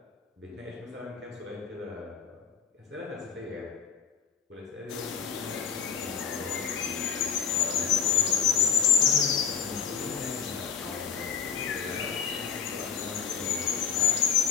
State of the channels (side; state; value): right; quieter; 7.3 dB